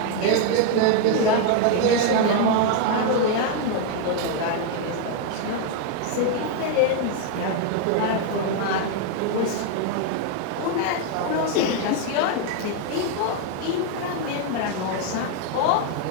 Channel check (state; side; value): different; both; correlation 0.01